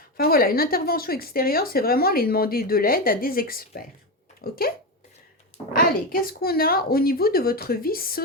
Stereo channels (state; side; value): normal; both; correlation 0.15